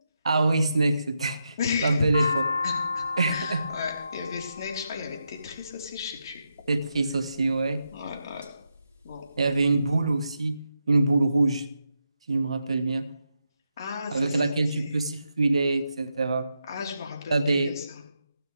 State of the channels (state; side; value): inverted; both; correlation -0.85